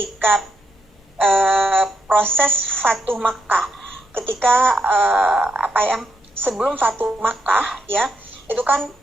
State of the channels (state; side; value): normal; both; correlation 0.79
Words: proses Fatuh Makkah, ketika sebelum Fatuh Makkah ya, itu kan